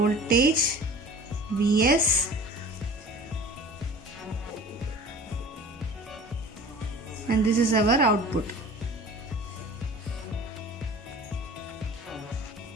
Vs, and this is our output.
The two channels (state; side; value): normal; both; correlation 0.42